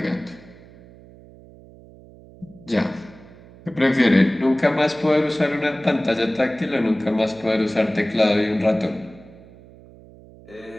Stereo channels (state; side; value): noise; right; hum, 22 dB below the sound